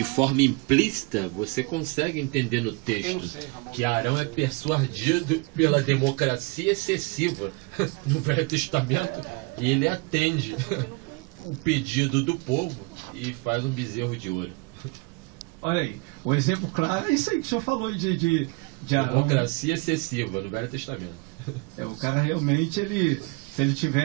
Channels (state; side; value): quieter; left; 27.6 dB